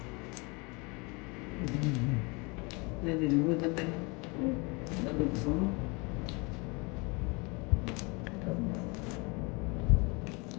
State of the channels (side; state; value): right; quieter; 28.8 dB